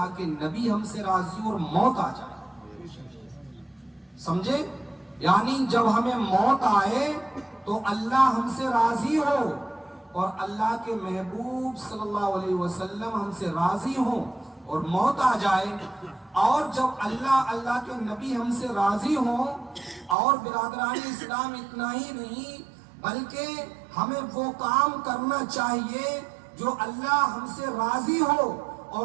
کے نبی ہم سے راضی ہو اور موت آ جائے۔ سمجھے؟ یعنی جب ہمیں موت آئے تو اللہ ہم سے راضی ہو اور اللہ کے محبوب صلی اللہ علیہ وسلم ہم سے راضی ہوں، اور موت آ جائے، اور جب اللہ کے نبی ہم سے راضی ہوں، اور برادران اسلام اتنا ہی نہیں بلکہ ہمیں وہ کام کرنا چاہیے جو اللہ ہم سے راضی ہو،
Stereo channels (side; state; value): left; drops out; at 20.2 s